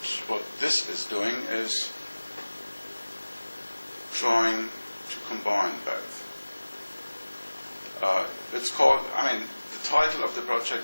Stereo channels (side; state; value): both; inverted; correlation -1.00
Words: this is doing is trying to combine both. It's called, the title of the